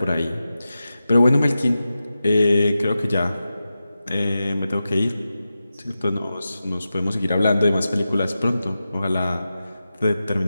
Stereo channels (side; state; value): both; inverted; correlation -0.92